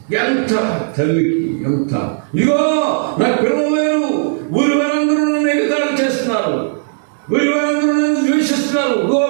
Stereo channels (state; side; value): silent; left; digital silence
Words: ఎంత తల్లికి ఎంత. ఇదిగో నాకు పిల్లలు లేరు, ఊరి వారందరూ నన్ను ఎగతాళి చేస్తున్నారు, ఊరి వారందరూ నన్ను ద్వేషిస్తున్నారు,